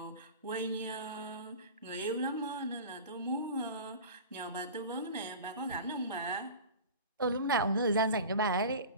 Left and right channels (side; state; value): both; inverted; correlation -0.35